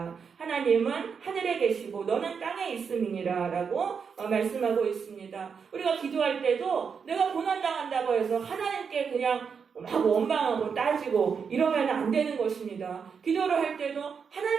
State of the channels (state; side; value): quieter; left; 6.2 dB